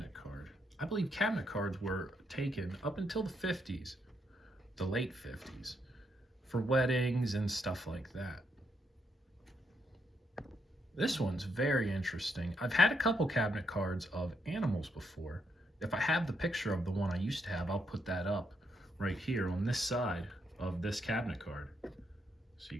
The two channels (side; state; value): both; normal; correlation 0.77